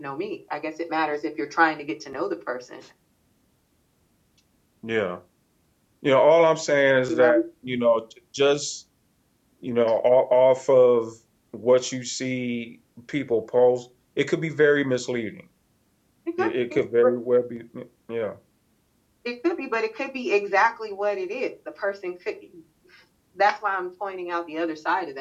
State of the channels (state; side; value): identical; both; correlation 1.00